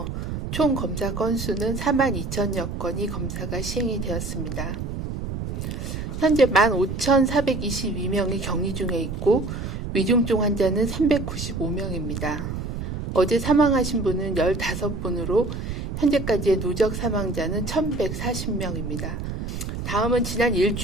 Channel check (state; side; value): noise; right; rumble, 5 dB below the sound